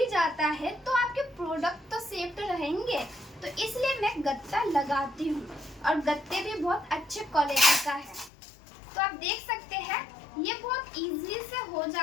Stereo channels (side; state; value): right; drops out; at 8.3 s